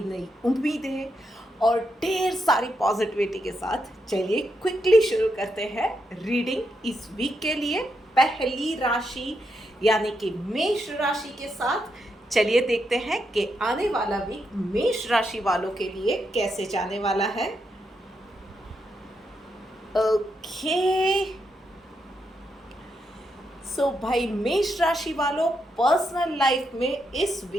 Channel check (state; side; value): normal; both; correlation 0.82